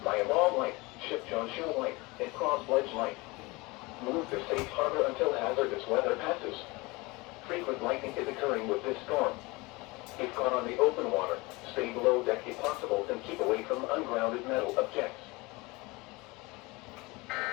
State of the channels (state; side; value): quieter; right; 24.0 dB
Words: Myamal Light, Ship John Show Light, and Cross Ledge Light. Move to safe harbor until hazardous weather passes. Frequent lightning is occurring with this storm. If caught on the open water, stay below deck if possible and keep away from ungrounded metal objects.